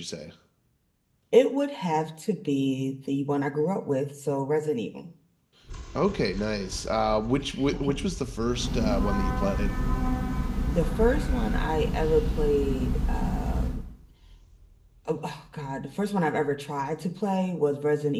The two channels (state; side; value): identical; both; correlation 1.00